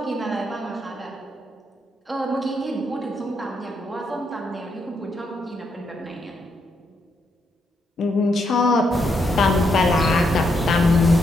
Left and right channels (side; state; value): both; normal; correlation 0.78